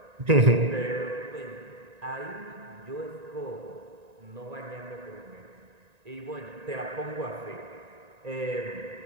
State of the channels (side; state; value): left; late; 1.9 ms